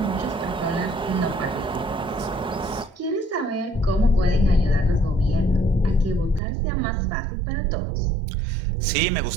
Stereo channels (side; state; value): left; drops out; at 6.4 s